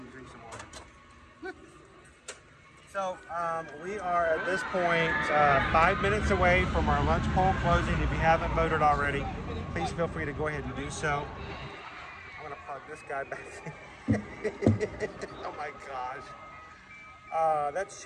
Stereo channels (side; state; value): both; identical; correlation 1.00